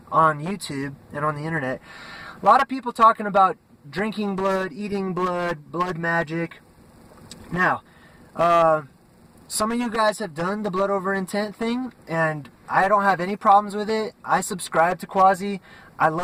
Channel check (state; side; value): identical; both; correlation 1.00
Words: YouTube and on the internet. A lot of people talking about drinking blood, eating blood, blood magic. Now, some of you guys have done the blood over intent thing, and I don't have any problems with it. I subscribe to Quasi. I